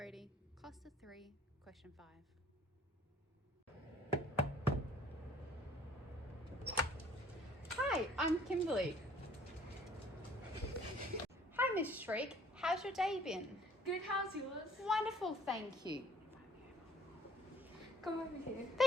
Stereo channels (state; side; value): normal; both; correlation 0.56